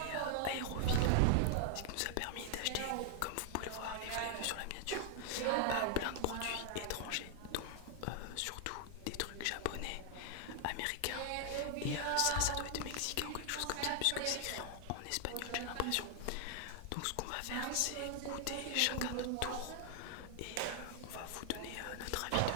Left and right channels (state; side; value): different; both; correlation 0.00